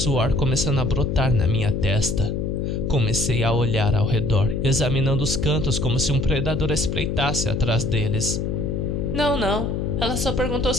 começando a brotar na minha testa. Comecei a olhar ao redor, examinando os cantos como se um predador espreitasse atrás deles. Não. Ela só perguntou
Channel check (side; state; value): left; noise; hum, 1 dB below the sound